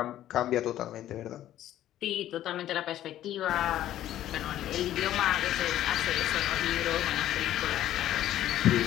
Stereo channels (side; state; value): right; quieter; 12.7 dB